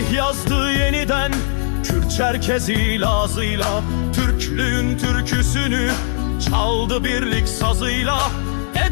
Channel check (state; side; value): silent; right; 63 dB below the other